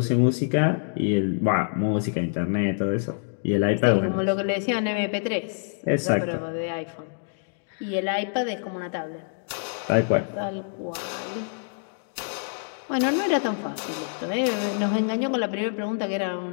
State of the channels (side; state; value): right; silent; digital silence